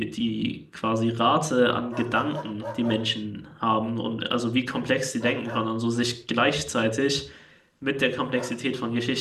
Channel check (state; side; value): identical; both; correlation 1.00